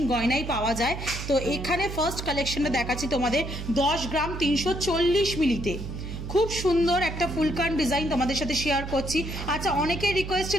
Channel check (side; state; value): right; noise; hum, 7 dB below the sound